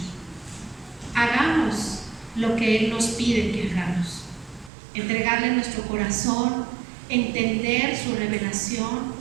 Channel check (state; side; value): drops out; left; at 4.7 s